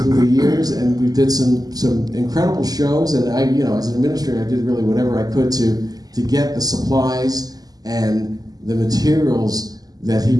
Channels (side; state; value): left; late; 0.18 ms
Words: the years, and we did some incredible shows, and I, as an administrator, I did really whatever I could to get the supplies and the materials that he